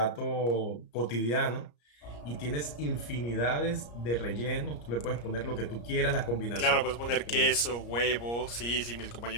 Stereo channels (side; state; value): right; late; 34 ms